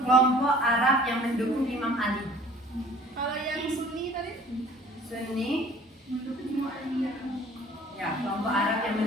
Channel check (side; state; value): both; normal; correlation 0.51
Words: Kelompok Arab yang mendukung Imam Ali. Kalau yang Sunni tadi? Sunni. Ya, kelompok Arab yang